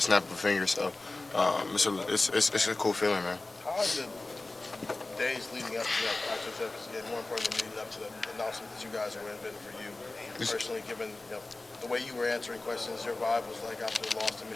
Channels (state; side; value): quieter; right; 3.1 dB